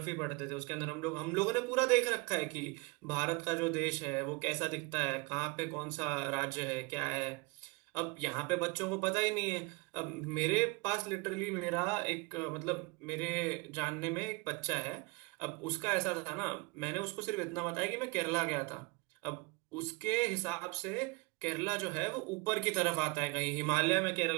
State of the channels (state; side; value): quieter; left; 27.5 dB